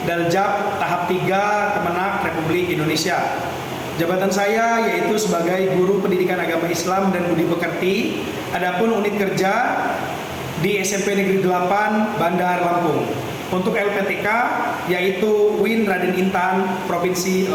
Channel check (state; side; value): identical; both; correlation 1.00